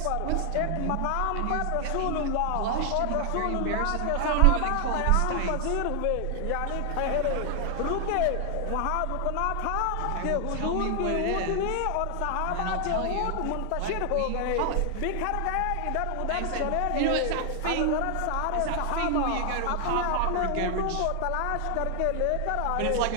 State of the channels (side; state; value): both; different; correlation 0.00